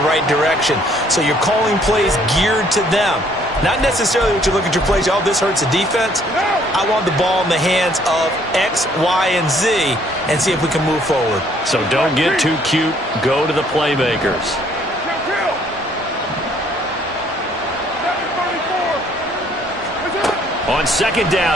right direction. So you're calling plays geared to them. Not necessarily what you look at your plays, oh, this hurts the defense. I want the ball in the hands of X, Y, and Z and see if we can move forward. So don't get too cute. Go to the playmakers. On second down,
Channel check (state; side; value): normal; both; correlation 0.63